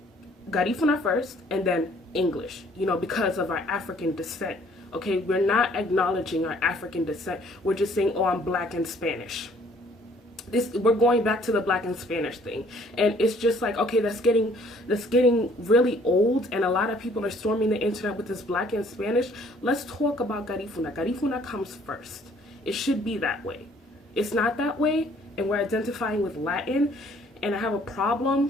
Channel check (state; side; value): normal; both; correlation 0.59